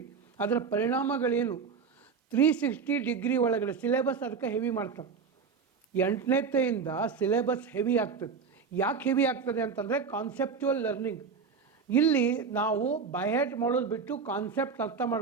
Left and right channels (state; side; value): quieter; left; 5.6 dB